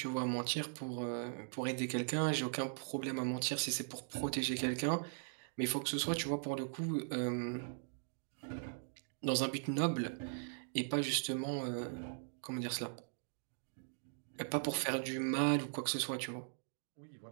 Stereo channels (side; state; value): left; silent; digital silence